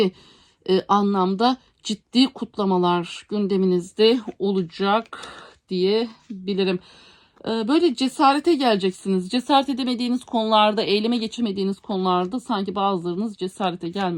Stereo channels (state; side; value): identical; both; correlation 1.00